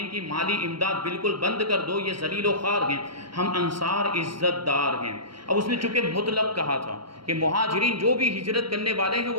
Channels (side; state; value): left; late; 0.73 ms